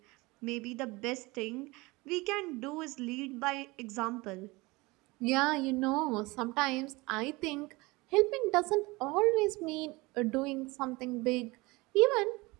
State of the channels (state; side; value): quieter; left; 23.3 dB